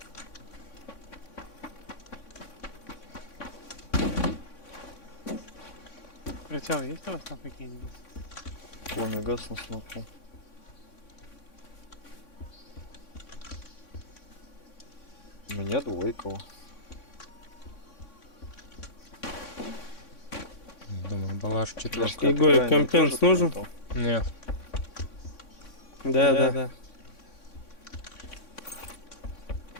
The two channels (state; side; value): late; right; 3.6 ms